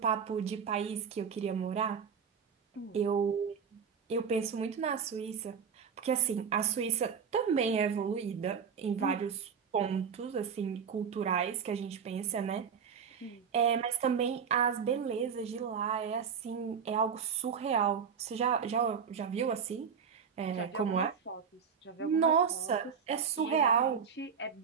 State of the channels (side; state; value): left; quieter; 6.6 dB